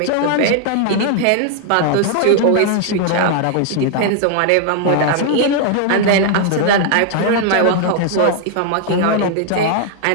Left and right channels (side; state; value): both; different; correlation 0.00